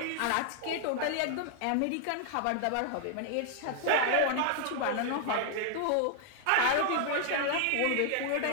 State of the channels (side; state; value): both; different; correlation 0.00